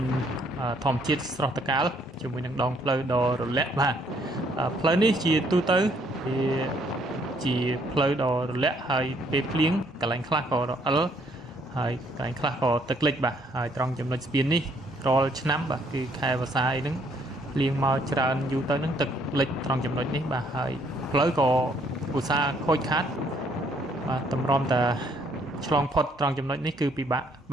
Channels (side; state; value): both; normal; correlation 0.67